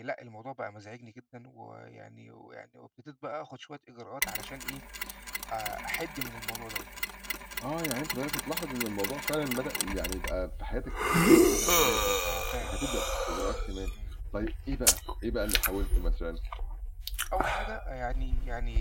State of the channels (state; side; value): identical; both; correlation 1.00